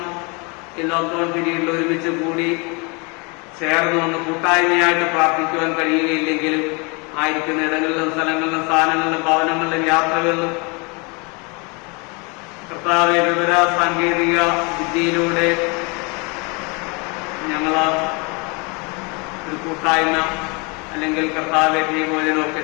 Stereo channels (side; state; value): right; quieter; 30.5 dB